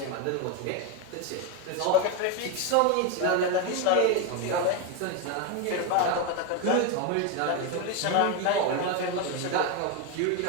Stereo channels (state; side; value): different; both; correlation 0.02